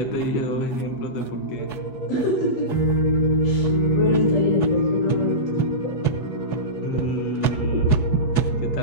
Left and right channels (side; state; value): right; late; 8.2 ms